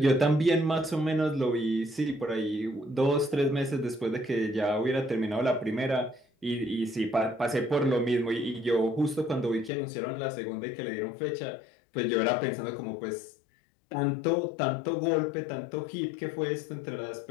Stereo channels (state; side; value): drops out; right; at 9.7 s